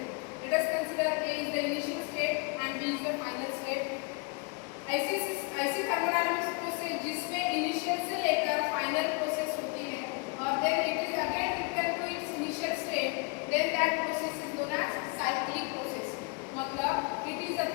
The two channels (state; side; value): quieter; right; 31.0 dB